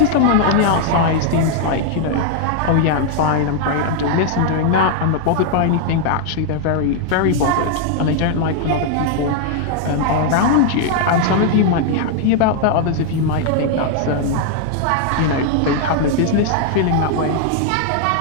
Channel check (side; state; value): both; different; correlation 0.00